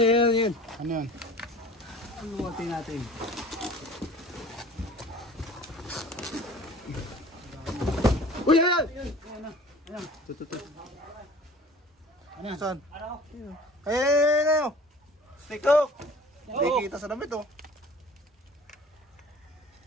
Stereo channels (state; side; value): normal; both; correlation 0.46